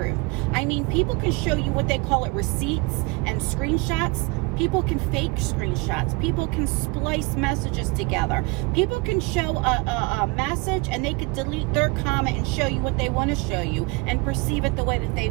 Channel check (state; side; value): quieter; left; 26.3 dB